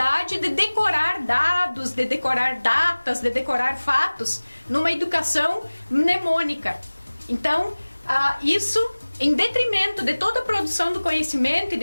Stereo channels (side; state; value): both; inverted; correlation -1.00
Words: de decorar dados, de decorar datas, de decorar fatos, numa educação mnemônica. Então, isso em detrimento de toda a produção do conhecimento e